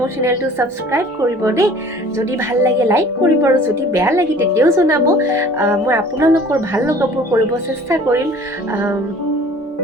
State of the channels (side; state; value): both; normal; correlation 0.48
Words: চেনেলটো ছাবস্ক্ৰাইব কৰিব দেই। যদি ভাল লাগে লাইক কৰিব আৰু যদি বেয়া লাগে তেতিয়াও জনাব। মই আপোনালোকৰ ভাল লগাবোৰ কৰিব চেষ্টা কৰিম।